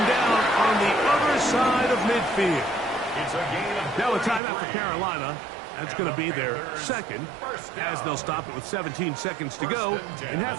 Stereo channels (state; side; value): drops out; left; at 4.4 s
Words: down on the other side of midfield. It's a gain of Now a timeout for Carolina. That's going to be their second, as they'll stop it with 17 seconds to go in